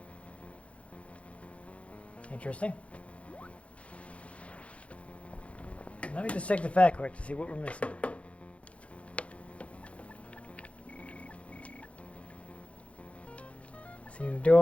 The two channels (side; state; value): right; late; 0.062 ms